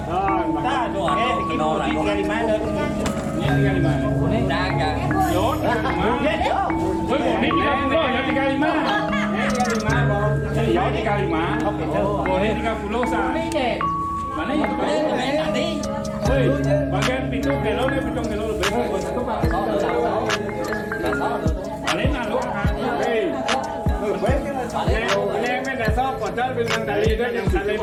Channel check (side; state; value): both; identical; correlation 1.00